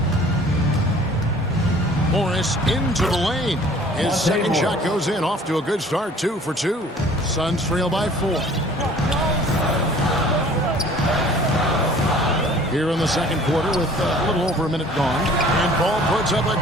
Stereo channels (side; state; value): both; normal; correlation 0.51